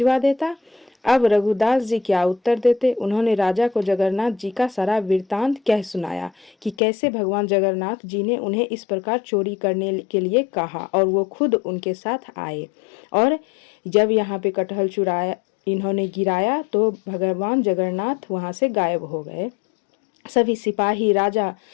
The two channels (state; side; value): drops out; right; at 6.8 s